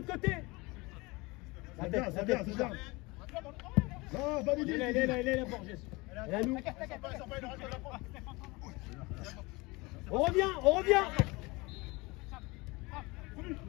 côté. La tête, c'est bien. Non, pas il est là, Borges. Et à nous. On revient.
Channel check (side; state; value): right; quieter; 24.2 dB